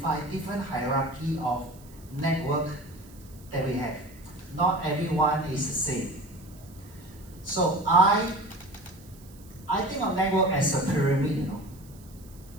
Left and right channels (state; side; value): noise; right; hiss, 24 dB below the sound